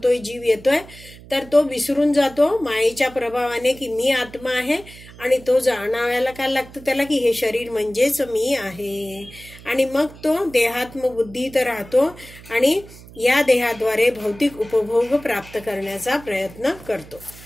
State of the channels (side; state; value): right; noise; hum, 19 dB below the sound